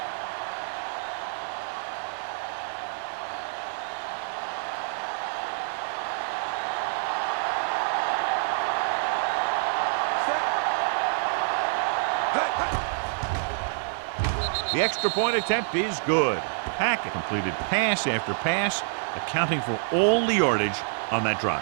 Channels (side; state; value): left; silent; 60 dB below the other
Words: The extra point attempt is good. Hackett completed pass after pass, accounting for all the yardage on that